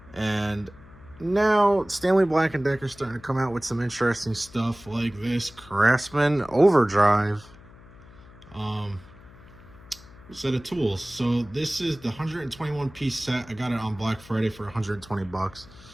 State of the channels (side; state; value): left; noise; hum, 22 dB below the sound